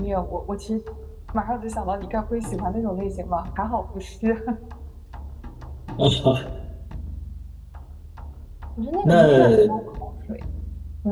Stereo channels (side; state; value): both; identical; correlation 1.00